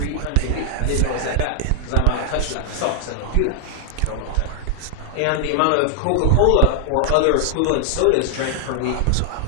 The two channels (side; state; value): both; different; correlation 0.00